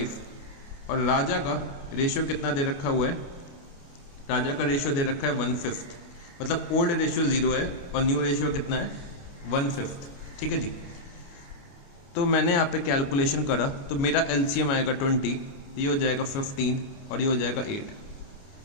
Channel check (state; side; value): late; right; 29 ms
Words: और राजा का रेशियो कितना दे रखा हुआ है, राजा का रेशियो दे रखा है 1/5, मतलब ओल्ड रेशियो 0 है और न्यू रेशियो कितना है 1/5। ठीक है जी, तो मैंने यहाँ पे कैलकुलेशन करा तो मेरा एलसीएम आएगा 20, ये हो जाएगा 15 और ये हो जाएगा 8।